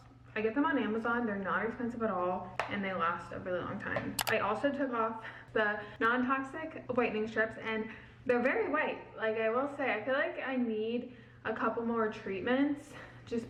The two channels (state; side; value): identical; both; correlation 1.00